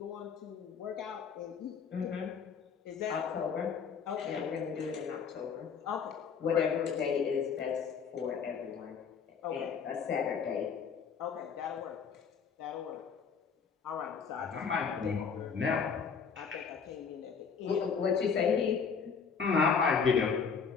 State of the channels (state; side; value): quieter; right; 6.2 dB